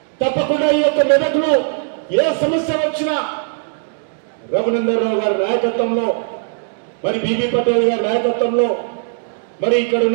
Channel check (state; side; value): silent; left; digital silence